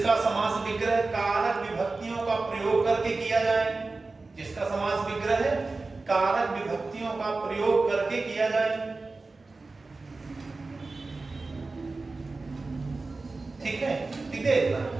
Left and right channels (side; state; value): left; quieter; 3.6 dB